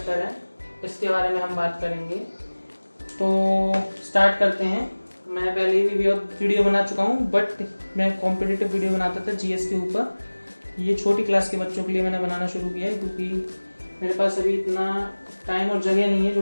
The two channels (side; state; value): both; inverted; correlation -1.00